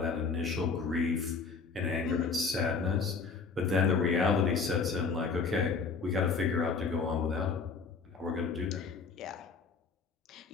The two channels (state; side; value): quieter; right; 5.0 dB